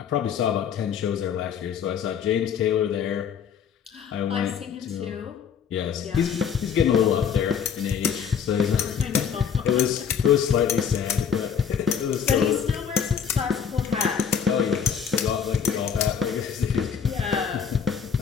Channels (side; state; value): right; quieter; 7.5 dB